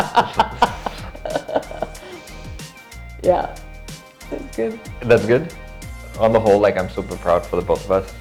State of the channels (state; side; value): identical; both; correlation 1.00